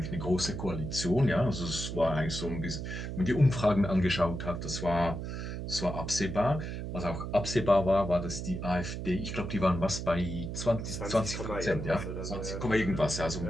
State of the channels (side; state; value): right; noise; hum, 5 dB below the sound